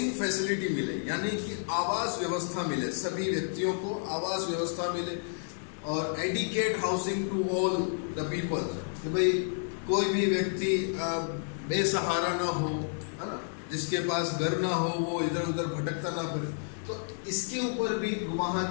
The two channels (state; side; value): silent; right; digital silence